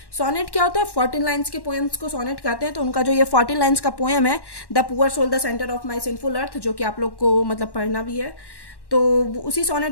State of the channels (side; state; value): right; late; 1.1 ms